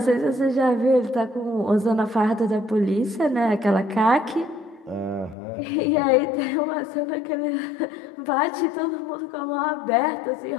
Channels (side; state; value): right; drops out; at 5.4 s